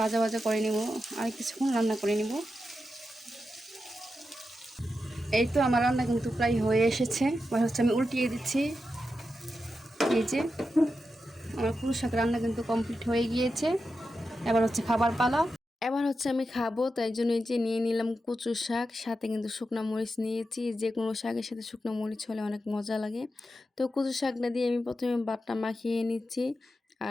ভাজা করে নেব, আর কিছুক্ষণ রান্না করে নেব। এই তো আমার রান্না কিন্তু প্রায় হয়ে এসেছে। এবার আমি উল্টিয়ে দিচ্ছি। এই যে আমার কচু শাক রান্না কিন্তু কমপ্লিট হয়ে গিয়েছে। এবার খাবার পালা। এবার আমি খাবো, তাই জন্য এই যে নিয়ে নিলাম কচু শাক, সাথে কিন্তু শুকনো মরিচ নিয়েছি। যে কোনো শাকের সাথে শুকনো মরিচ হলে অনেক মজা লাগে। তো কচু শাকটা দিয়ে আমি প্রথমে বাটটা মাখিয়ে নিচ্ছি,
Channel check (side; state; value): both; normal; correlation 0.89